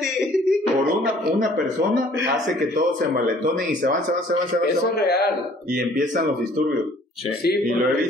por una persona, hace que todos se envalentonen y se van. Eso es real. Y empiezan los disturbios. Sí, y lo he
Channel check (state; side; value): normal; both; correlation 0.56